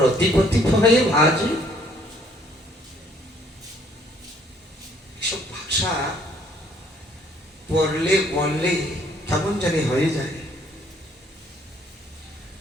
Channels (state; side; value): normal; both; correlation 0.63